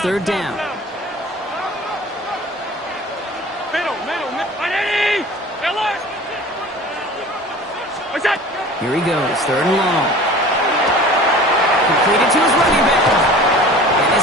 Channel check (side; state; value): both; normal; correlation 0.42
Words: down. Here he goes, third and long. Completed to his running back. And